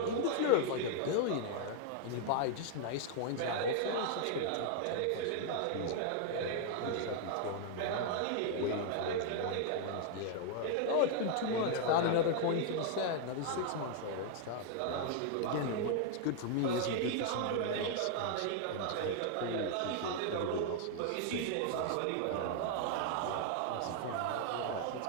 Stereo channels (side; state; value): both; different; correlation 0.00